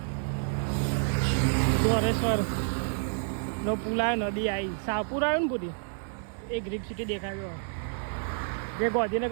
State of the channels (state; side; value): silent; left; 58 dB below the other